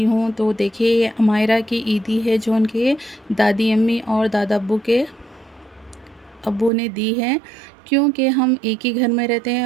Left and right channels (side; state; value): left; drops out; at 6.7 s